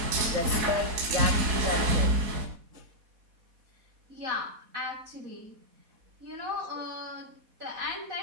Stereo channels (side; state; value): left; late; 4.1 ms